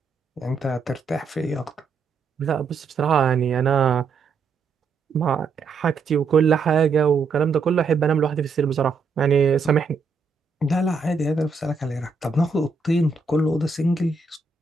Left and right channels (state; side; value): quieter; left; 4.6 dB